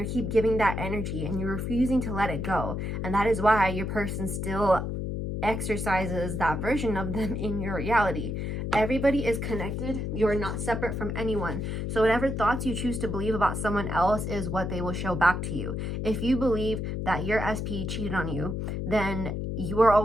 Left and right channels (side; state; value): left; noise; hum, 3 dB below the sound